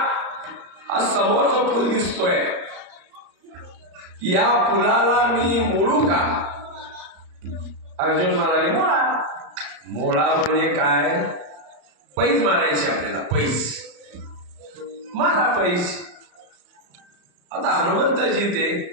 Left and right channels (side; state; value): left; late; 34 ms